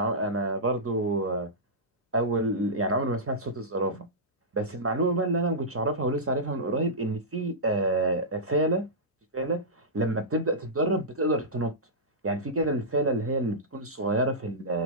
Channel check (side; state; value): both; normal; correlation -0.14